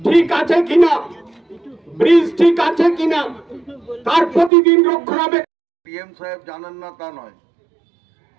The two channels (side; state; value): left; drops out; at 4.5 s